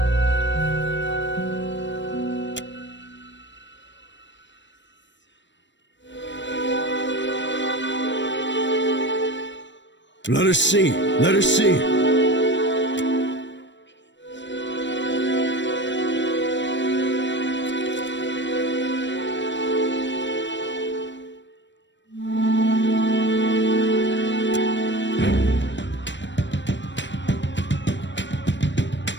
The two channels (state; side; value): late; right; 0.53 ms